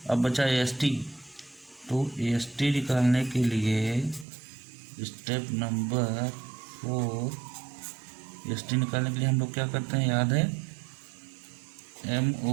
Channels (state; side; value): drops out; left; at 4.2 s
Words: अब बचा AST, तो AST निकालने के लिए स्टेप नंबर 4, AST निकालने के लिए हम लोग क्या करते हैं, याद है,